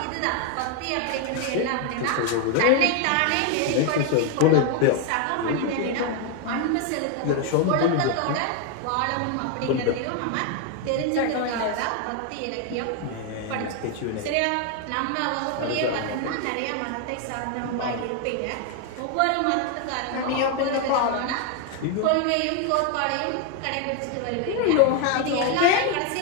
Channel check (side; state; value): both; different; correlation 0.01